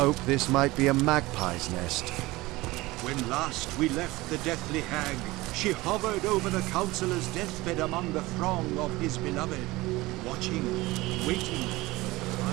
this might be a magpie's nest. When last we left the deathly hag, she hovered over the councillor's deathbed among the throng of his beloved, watching, waiting.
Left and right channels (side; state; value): left; quieter; 20.2 dB